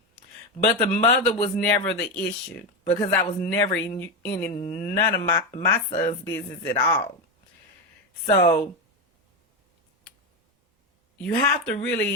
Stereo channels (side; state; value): both; normal; correlation 0.12